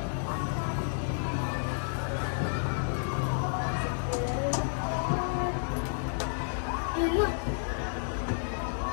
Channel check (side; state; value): right; silent; digital silence